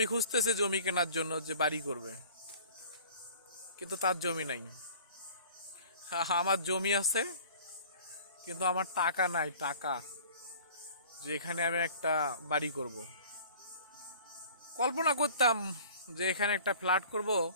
খুঁজতেছে জমি কেনার জন্য, যে বাড়ি করবে, কিন্তু তার জমি নাই। আমার জমি আছে, কিন্তু আমার টাকা নাই, টাকা যে এখানে আমি একটা বাড়ি করব। কল্পনা করতাম যে এখানে একটা ফ্ল্যাট করব,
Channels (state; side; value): inverted; both; correlation -0.47